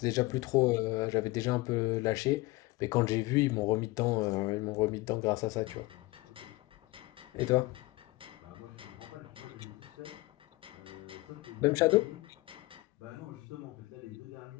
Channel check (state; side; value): quieter; right; 21.5 dB